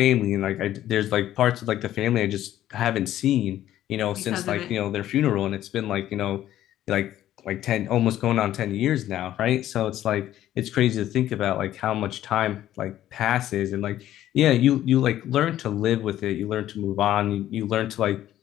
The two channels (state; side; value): quieter; right; 12.8 dB